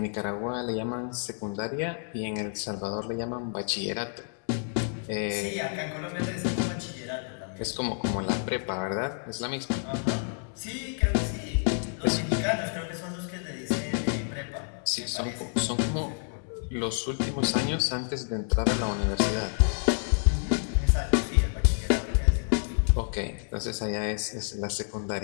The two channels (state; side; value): silent; right; 59 dB below the other